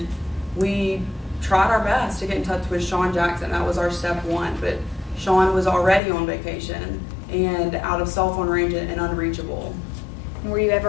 we tried our best to get in touch with Sean Jackson. That was our step one, but Sean was already on vacation and out of cell phone range and unreachable. And were you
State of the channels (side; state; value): right; drops out; at 6.0 s